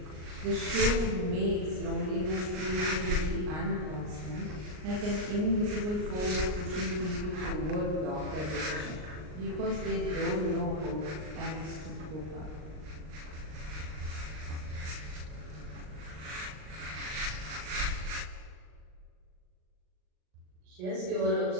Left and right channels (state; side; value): late; left; 39 ms